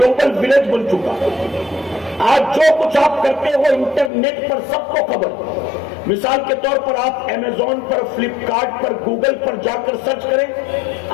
ولیج بن چکا ہے۔ آج جو کچھ آپ کرتے ہو انٹرنیٹ پر سب کو خبر۔ مثال کے طور پر آپ امیزون پر، فلپ کارٹ پر، گوگل پر جا کر سرچ کریں،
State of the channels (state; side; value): drops out; right; at 4.1 s